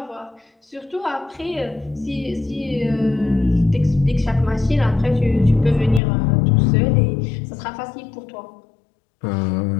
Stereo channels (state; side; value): drops out; right; at 6.0 s